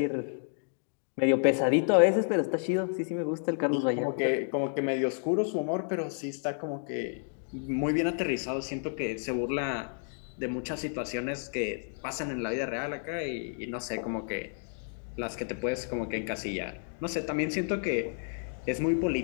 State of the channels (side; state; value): right; silent; 57 dB below the other